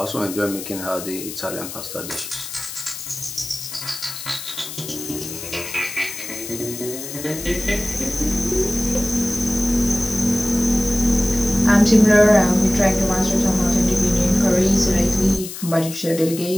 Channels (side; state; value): left; noise; hiss, 10 dB below the sound